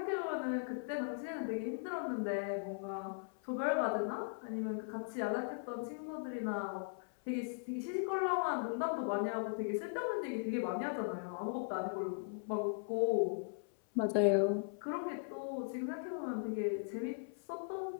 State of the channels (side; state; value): right; silent; 52 dB below the other